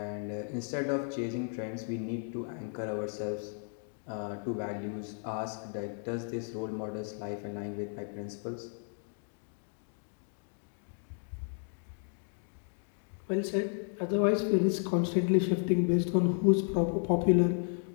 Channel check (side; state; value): right; silent; 55 dB below the other